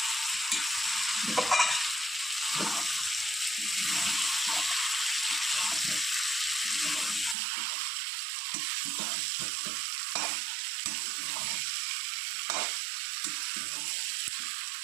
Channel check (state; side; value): drops out; left; at 7.4 s